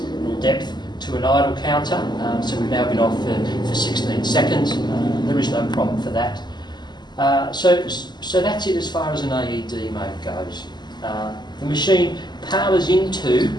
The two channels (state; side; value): late; right; 0.21 ms